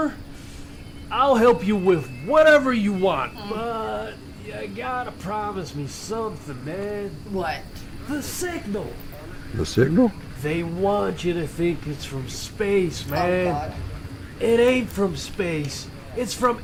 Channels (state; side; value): identical; both; correlation 1.00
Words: I'll help you with whatever you want, but you gotta promise me something, man. What? The signal. The signal? They want you to think it's from space, Oh, man. God. It ain't from space. It's from